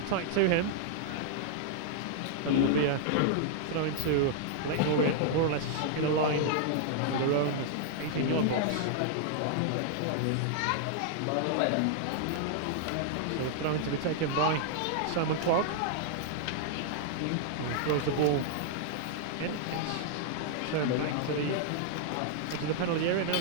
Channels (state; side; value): different; both; correlation -0.01